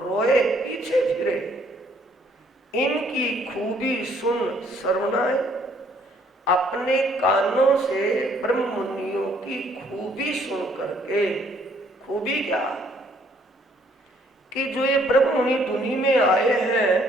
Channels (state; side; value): normal; both; correlation 0.64